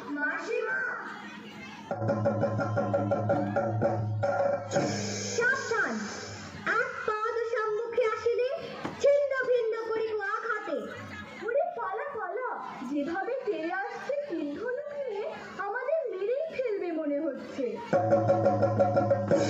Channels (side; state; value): both; identical; correlation 1.00